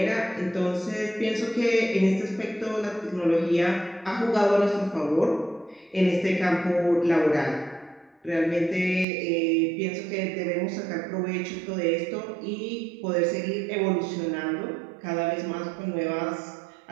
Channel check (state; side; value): drops out; left; at 9.1 s